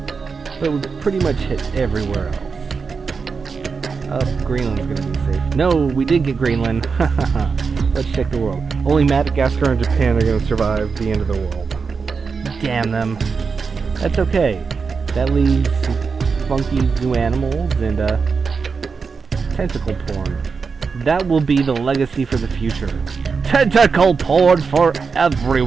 But we pretty much hit everywhere else. Greenland's gonna be safe. No, we did get Greenland. Let's check the world. Only Madagascar and Japan are gonna survive the end of the world. Damn them. That's okay. That leaves funky zoo animals and tentacle porn. That will be the legacy for the future. Tentacle porn for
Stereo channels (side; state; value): left; quieter; 5.2 dB